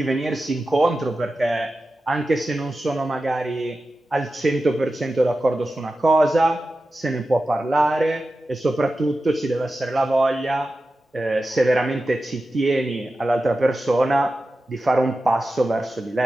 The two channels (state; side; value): normal; both; correlation 0.93